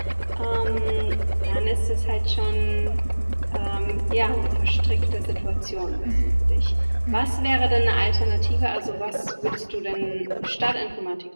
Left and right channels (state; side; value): inverted; both; correlation -1.00